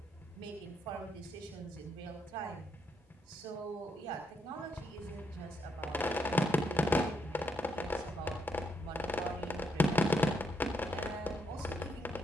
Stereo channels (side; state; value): both; normal; correlation 0.77